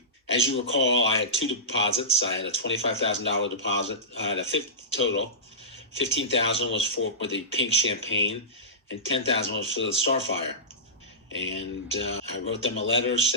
As you recall, I had two deposits. I had a $25,000 deposit. I had a total. $15,000 was for the pink champagne, and $10,000 was for the Starfire. And I wrote them a letter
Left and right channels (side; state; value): both; normal; correlation -0.17